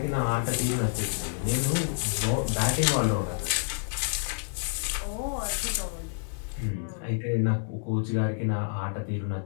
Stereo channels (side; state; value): right; silent; digital silence